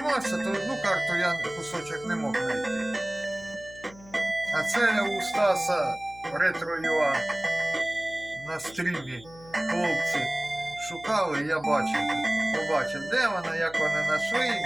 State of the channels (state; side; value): noise; left; hum, 21 dB below the sound